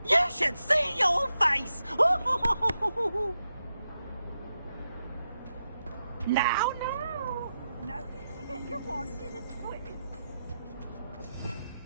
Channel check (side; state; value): both; inverted; correlation -0.87